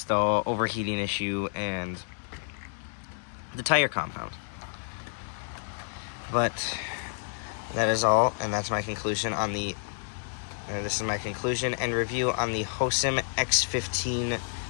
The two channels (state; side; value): silent; right; digital silence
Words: the overheating issue and the tire compound. But that is all, and that's my conclusion on this is my conclusion and review on the Hosim X15